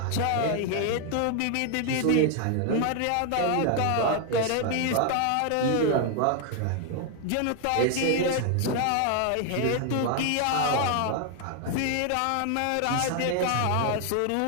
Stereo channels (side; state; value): both; different; correlation 0.00